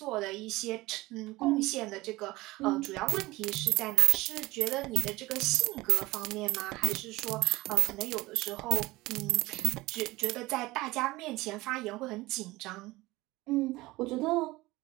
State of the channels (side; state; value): left; quieter; 19.9 dB